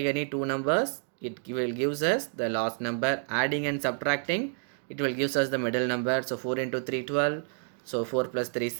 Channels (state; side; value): silent; left; 55 dB below the other